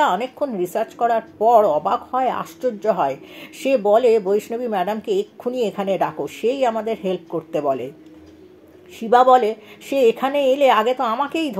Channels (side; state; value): both; identical; correlation 1.00